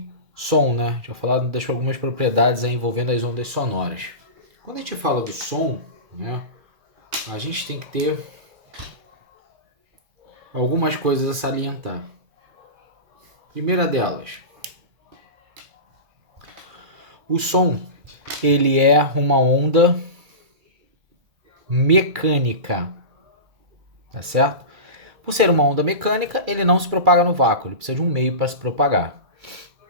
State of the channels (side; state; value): left; late; 2.3 ms